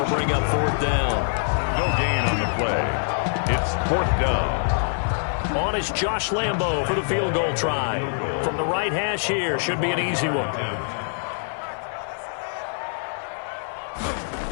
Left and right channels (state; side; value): silent; right; 62 dB below the other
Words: bring up 4th down. No gain on the play. It's 4th down. On is Josh Lambo for the field goal try. From the right hash here, should be an easy one.